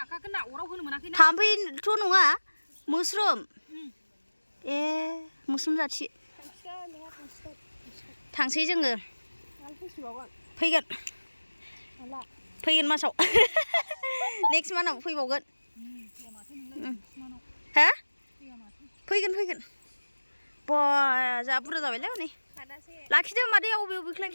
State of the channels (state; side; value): inverted; both; correlation -1.00